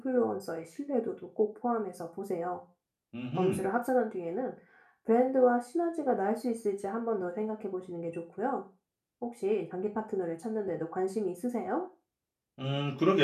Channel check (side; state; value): both; identical; correlation 1.00